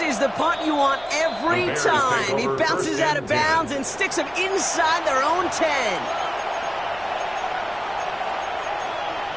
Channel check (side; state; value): left; noise; rumble, 24 dB below the sound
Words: is the punt you want every time. He bounces out of bounds and sticks them inside their own 10.